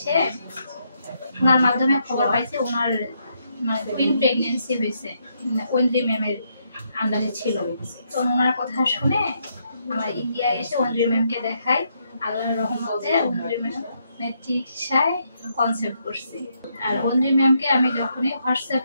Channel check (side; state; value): both; inverted; correlation -0.77